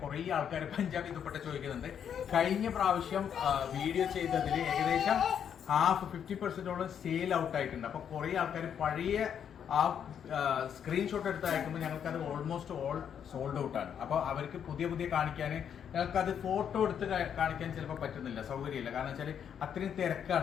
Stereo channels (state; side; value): quieter; right; 8.4 dB